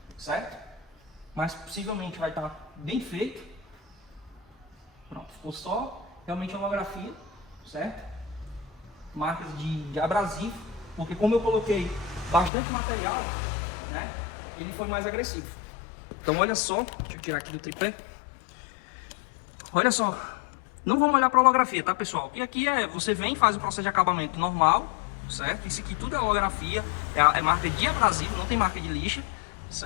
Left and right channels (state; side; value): drops out; right; at 12.5 s